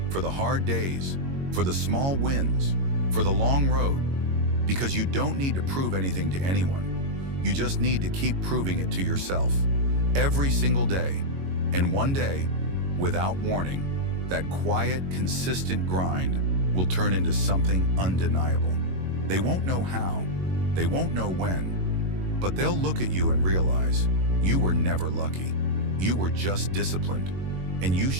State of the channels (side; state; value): left; late; 22 ms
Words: for the hard days, for the small wins, for the long road, because you don't need to prove anything to anyone. You just need to keep proving it to yourself every single day. And one day, without warning, that quiet, consistent grind will turn into something undeniable. They won't know how, they won't know when, but they'll look at you and realize you were never lucky. You were just disciplined, and you